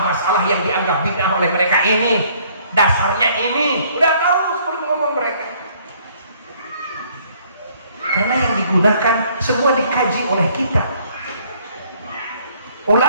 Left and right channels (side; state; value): both; inverted; correlation -0.62